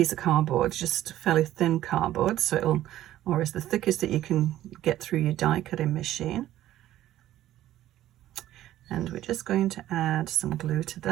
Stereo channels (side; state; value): left; quieter; 13.5 dB